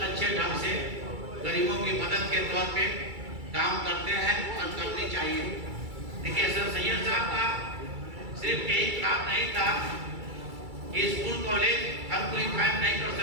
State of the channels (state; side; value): late; left; 2.3 ms